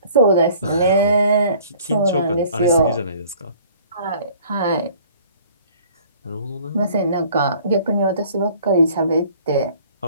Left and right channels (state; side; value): inverted; both; correlation -0.53